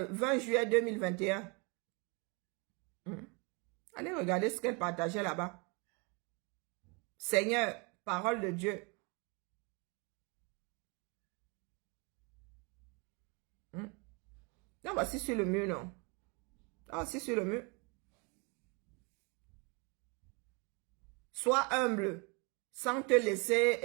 juillet 2021. Allez regarder ce qu'elle partageait là-bas. Seigneur, parole de Dieu. Non, voici sur le mur, non. Ah, c'est sur le mur. Sois humble, sans te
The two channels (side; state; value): left; quieter; 31.6 dB